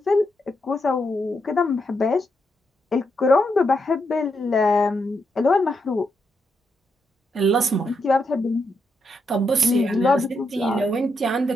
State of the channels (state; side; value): normal; both; correlation 0.81